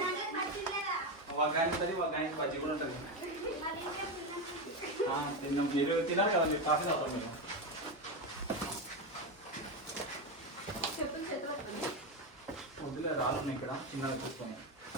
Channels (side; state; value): both; normal; correlation 0.13